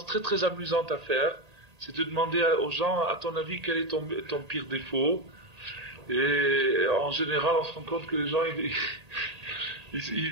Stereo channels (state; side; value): late; left; 1.8 ms